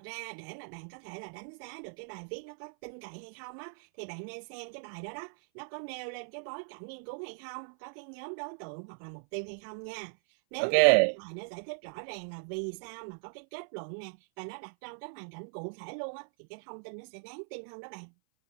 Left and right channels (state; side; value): silent; left; 53 dB below the other